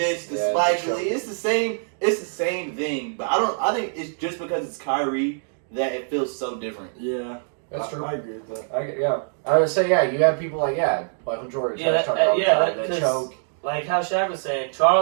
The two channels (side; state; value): left; silent; digital silence